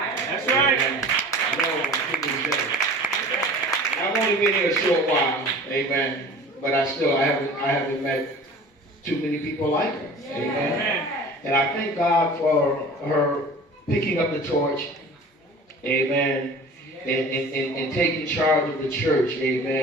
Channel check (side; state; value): both; normal; correlation 0.42